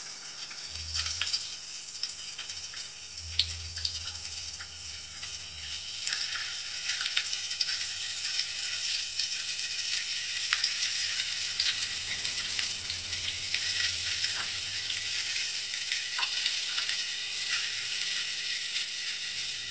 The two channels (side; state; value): both; identical; correlation 1.00